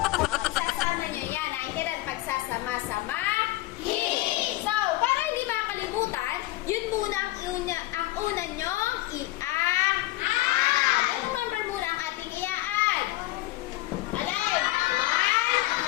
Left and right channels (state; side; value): quieter; right; 18.5 dB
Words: isasama nyo yan. Naintindihan pagsasama-sama. So, para hindi makalimutan, yun muna ang una nyong i-add. Anong number muna ang ating i-add? Alay! 1